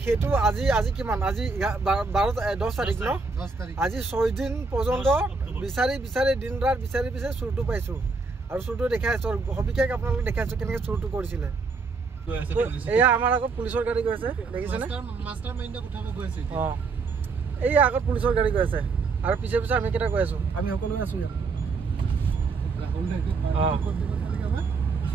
হেতু আজি কিমান আজি 10 तारिख ন আজি 6 দিন পৰ্যন্ত বিচাৰি দিন ৰাত বিচাৰি চুৰটো পাইছো আৰু চুৰটো দেখাইছো হবিকে আপোনালোক দেখাইছো কেনেকৈ চুৰটো কৰিছিলে এয়া আমাৰ আগত পুলিচৰ গাড়ী গৈছে দেখিছেনে মাস্টাৰ মাইন্ডক উঠাব গৈছে এই আগত পুলিচৰ গাড়ী গৈছে আৰু পিছে আমি কেটা গৈ আছো আমি সকলো আছো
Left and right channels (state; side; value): quieter; left; 4.3 dB